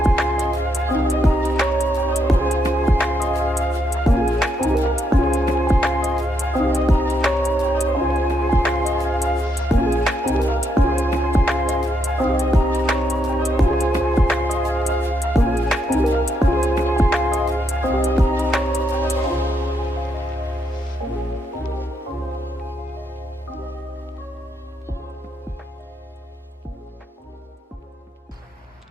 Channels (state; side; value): normal; both; correlation 0.78